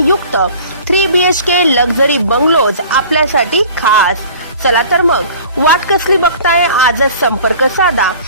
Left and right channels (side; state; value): both; inverted; correlation -0.45